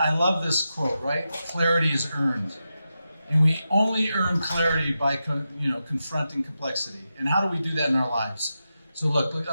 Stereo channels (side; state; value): both; inverted; correlation -0.89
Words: love this quote, right? Clarity is earned. And we only earn clarity by confronting complexity. And how do we do that in our lives? So look,